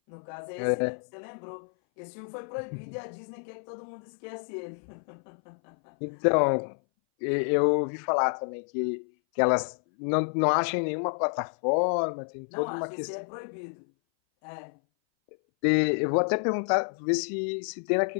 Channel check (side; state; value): right; silent; 58 dB below the other